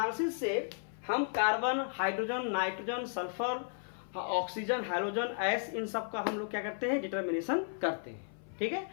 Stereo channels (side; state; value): right; silent; 55 dB below the other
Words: से हम carbon, hydrogen, nitrogen, sulphur, oxygen, hydrogen, S, इन सब का हम लोग क्या करते हैं, डिटर्मिनेशन करते हैं। ठीक है,